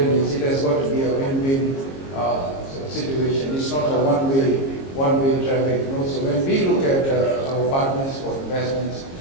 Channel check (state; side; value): late; right; 22 ms